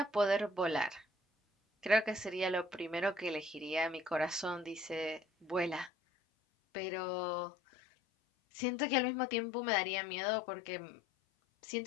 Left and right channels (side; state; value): right; drops out; at 5.9 s